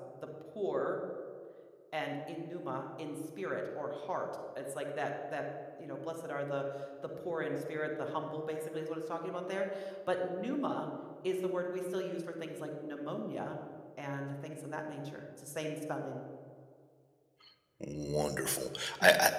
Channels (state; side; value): identical; both; correlation 1.00